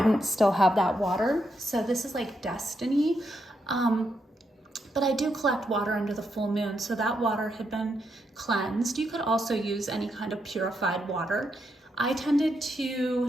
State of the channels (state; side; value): normal; both; correlation 0.81